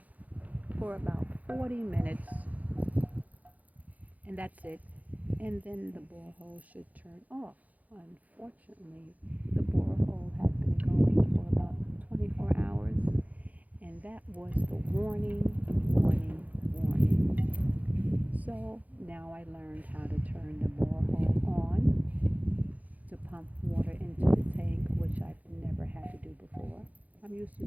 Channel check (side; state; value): left; late; 0.077 ms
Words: for about 40 minutes, and that's it. And then the borehole should turn off. Unfortunately, the borehole had been going for about 24 hours, and that was the warning. So now I learned how to turn the borehole on to pump water into the tank, which I've never had to do before. I'm used to